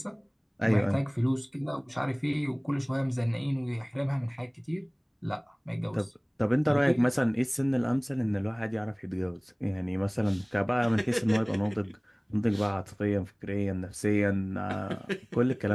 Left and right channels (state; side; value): identical; both; correlation 1.00